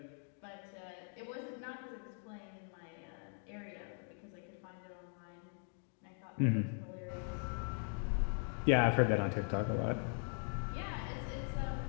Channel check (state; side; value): silent; right; 51 dB below the other